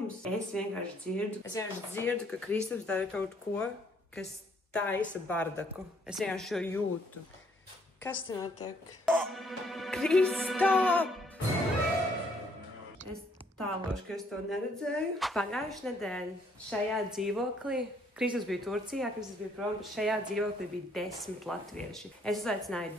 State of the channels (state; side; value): normal; both; correlation 0.67